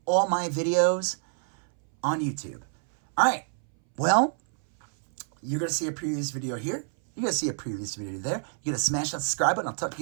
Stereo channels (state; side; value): silent; left; 60 dB below the other